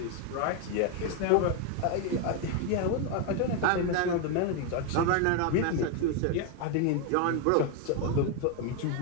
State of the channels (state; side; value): different; both; correlation 0.01